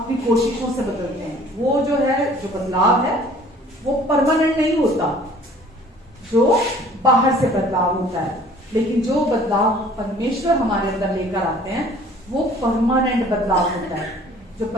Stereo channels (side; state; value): both; normal; correlation 0.52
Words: अपनी कोशिशों से बदलते हैं। वो जो है, जो बदलाव है वो परमानेंट नहीं होता, जो बाहर से बदलाव होता है। लेकिन जो बदलाव परमेश्वर हमारे अंदर लेकर आते हैं वो परमानेंट बदलाव होता है, जो